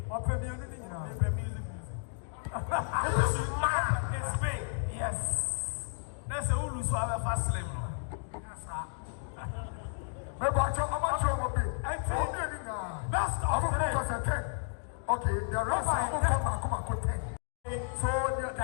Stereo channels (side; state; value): right; silent; digital silence